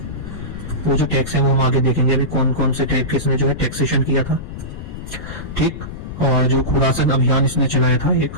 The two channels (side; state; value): left; noise; rumble, 10 dB below the sound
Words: वो जो टैक्स है वो हम आगे देखेंगे अभी कौन कौन से टाइप के इसने जो है टैक्सेशन किया था। ठीक, और जो खुरासन अभियान इसने चलाया था, एक